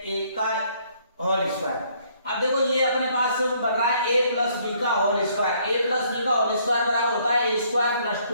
ए का होल स्क्वायर। अब देखो ये अपने पास बन रहा है a प्लस बी का whole square. a plus b का होल स्क्वायर बराबर होता है a स्क्वायर प्लस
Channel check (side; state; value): both; inverted; correlation -0.65